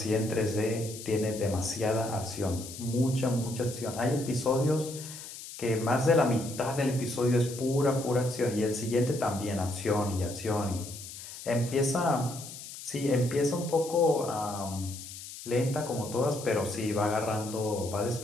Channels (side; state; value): left; noise; hiss, 12 dB below the sound